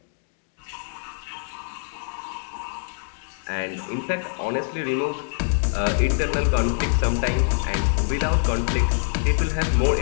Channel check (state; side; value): silent; right; digital silence